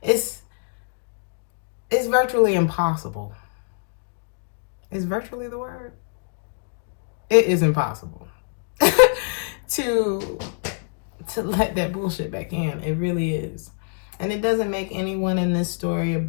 it's virtually impossible. Is virtually the word? It is impossible to let that bullshit back in. It really is. And it doesn't make anyone in this story a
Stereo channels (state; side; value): silent; right; digital silence